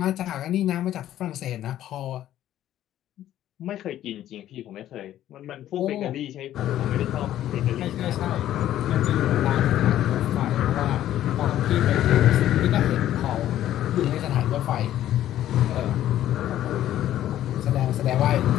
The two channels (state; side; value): quieter; right; 12.5 dB